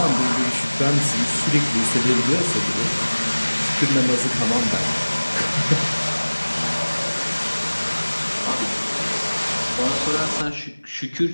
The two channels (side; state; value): both; inverted; correlation -1.00